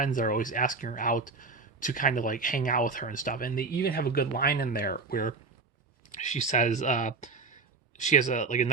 that are always asking her out to kind of like hang out with her and stuff. And they even have a good line in there where she says she has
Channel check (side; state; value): left; quieter; 4.3 dB